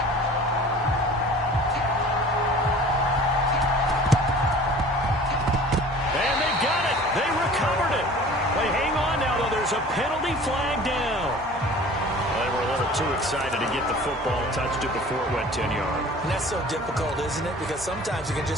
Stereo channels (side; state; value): both; normal; correlation 0.44